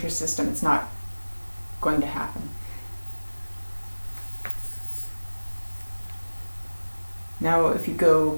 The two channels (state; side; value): inverted; both; correlation -1.00